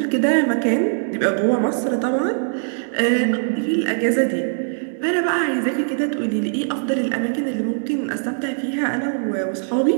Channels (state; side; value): silent; left; digital silence